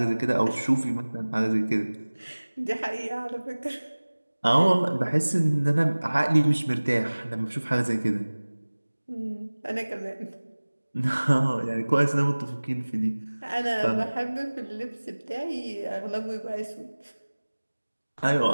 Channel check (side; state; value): both; inverted; correlation -1.00